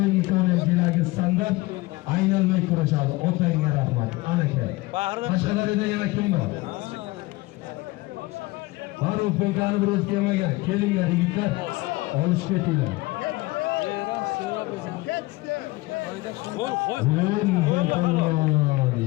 ikkovlanchiligi standart aylanmay kurashadi. Otangga rahmat. Anaka. Qashqadaryoda yana kim bor? Farruh Penkani biroz kelmagan. Kelinglar yigitlar. Olishib ketinglar.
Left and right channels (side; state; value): right; quieter; 21.0 dB